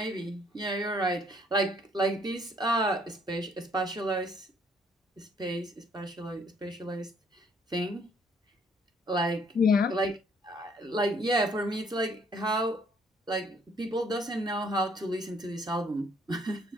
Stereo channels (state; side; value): normal; both; correlation 0.64